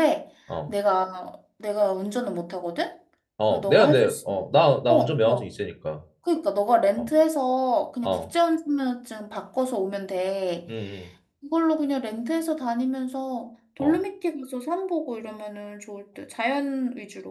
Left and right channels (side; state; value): both; identical; correlation 1.00